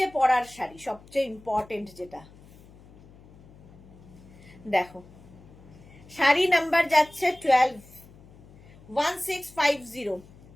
পরার শাড়ি সবচেয়ে ইম্পর্টেন্ট যেটা। দেখো শাড়ি নাম্বার যাচ্ছে 12, 1650।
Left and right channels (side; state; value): left; noise; hum, 23 dB below the sound